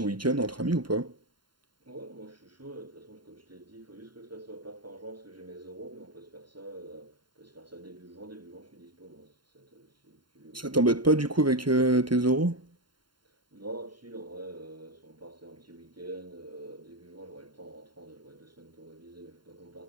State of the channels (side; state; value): left; late; 0.72 ms